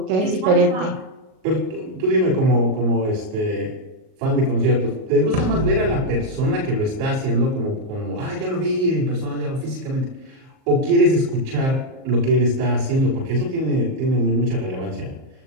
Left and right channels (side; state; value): left; late; 38 ms